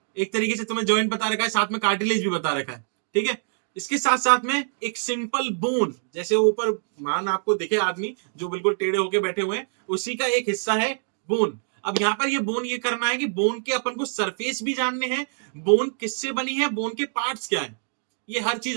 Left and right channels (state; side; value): silent; left; digital silence